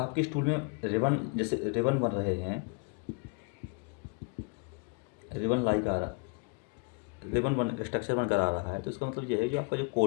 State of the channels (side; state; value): right; quieter; 32.5 dB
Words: स्टूल में रिबन, जैसे रिबन बन रहे हैं, रिबन लाइक आ रहा, रिबन बन स्ट्रक्चर बनकर आ रहा है, तो इसका मतलब ये है जो आपका जो